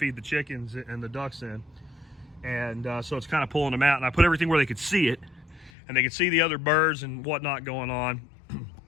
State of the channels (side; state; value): right; drops out; at 5.7 s